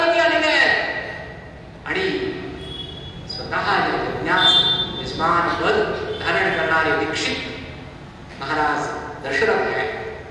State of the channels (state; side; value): identical; both; correlation 1.00